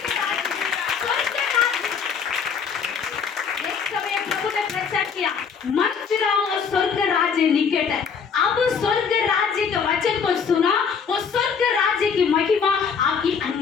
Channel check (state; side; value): quieter; right; 6.3 dB